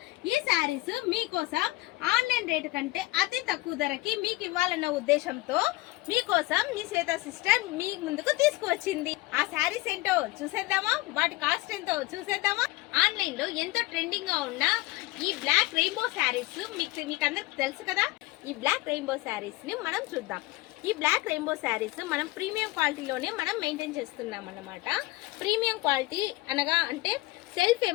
ఈ శారీస్ మీకోసం ఆన్లైన్ రేటు కంటే అతి తక్కువ ధరకి మీకు ఇవ్వాలన్న ఉద్దేశంతో మీకోసం మీ శ్వేత సిస్టర్ మీ ముందుకు తీసుకువచ్చింది. ఆ శారీస్ ఏంటో చూసేద్దామా, వాటి కాస్ట్ ఎంతో చూసేద్దామా. ఆన్లైన్ లో ఎంతో ట్రెండింగ్ గా ఉన్న ఈ బ్లాక్ రెయిన్బో శారీస్ మీకు అందరికి తెలుసు కదా. ఈ బ్లాక్ రెయిన్బో శారీస్ ని మనం చూద్దాం. ఈ బ్లాక్ రెయిన్బో శారీస్ మనం ప్రీమియం క్వాలిటీలోనే మనం మెయింటైన్ చేస్తున్నాం అన్నమాట. ప్రీమియం క్వాలిటీ అనగా అంటే సెల్ఫ్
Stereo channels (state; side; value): quieter; right; 20.5 dB